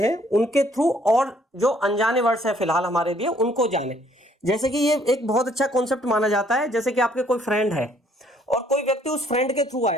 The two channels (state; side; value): normal; both; correlation 0.64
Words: उनके थ्रू और जो अनजाने वर्ड्स है फिलहाल हमारे लिए उनको जाने। जैसे कि ये एक बहुत अच्छा कॉन्सेप्ट माना जाता है। जैसे कि आपके कोई फ्रेंड है और कोई व्यक्ति उस फ्रेंड के थ्रू